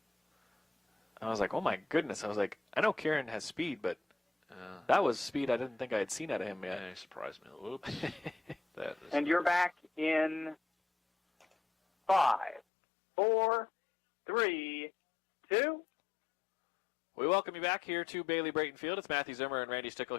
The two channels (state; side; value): drops out; right; at 12.6 s